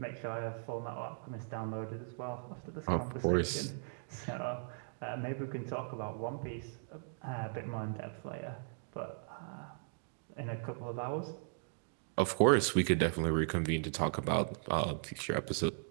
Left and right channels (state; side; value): silent; left; digital silence